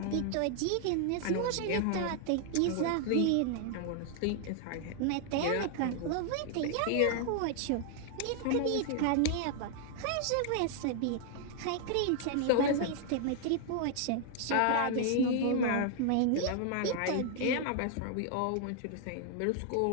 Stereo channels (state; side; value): different; both; correlation 0.00